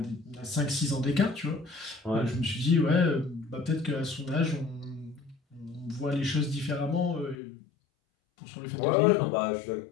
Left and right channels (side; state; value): right; drops out; at 7.4 s